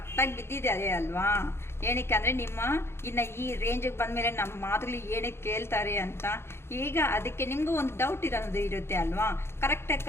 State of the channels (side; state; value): right; late; 0.12 ms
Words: ಬಿದ್ದಿದ್ದಾರೆ ಅಲ್ವಾ? ಏನಕ್ಕೆ ಅಂದರೆ ನಿಮ್ಮ ಇನ್ನು ಈ ರೇಂಜಿಗೆ ಬಂದಮೇಲೆ ನಮ್ಮ ಮಾತುಗಳು ಏನಕ್ಕೆ ಕೇಳ್ತಾರೆ ಅಂತ. ಈಗ ಅದಕ್ಕೆ ನಿಮಗೂ ಒಂದು ಡೌಟ್ ಇರೋದು ಇರುತ್ತೆ ಅಲ್ವಾ? ಕರೆಕ್ಟಕ್ಕ